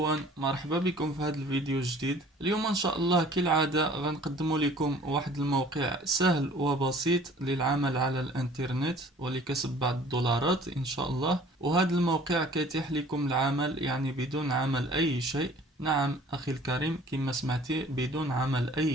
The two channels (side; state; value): both; normal; correlation 0.51